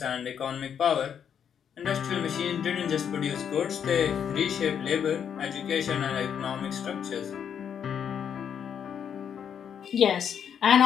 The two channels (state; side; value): quieter; right; 8.2 dB